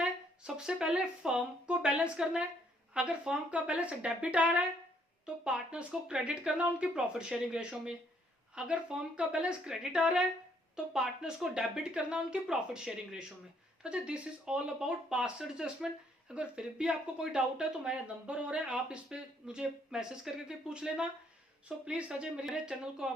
है सबसे पहले फर्म को बैलेंस करना है। अगर फर्म का बैलेंस डेबिट आ रहा है तो पार्टनर्स को क्रेडिट करना उनकी प्रॉफिट शेयरिंग रेशो में। अगर फर्म का बैलेंस क्रेडिट आ रहा है तो पार्टनर्स को डेबिट करना उनकी प्रॉफिट शेयरिंग रेशो में। तो this is all about past adjustment. अगर फिर भी आपको कोई डाउट है तो मेरा नंबर हो रहा है, आप इस पे मुझे मैसेज करके पूछ लेना। सो प्लीज अजय मेरे चैनल को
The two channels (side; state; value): both; normal; correlation 0.68